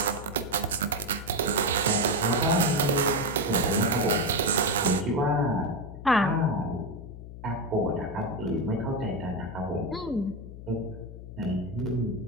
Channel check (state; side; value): noise; left; hum, 13 dB below the sound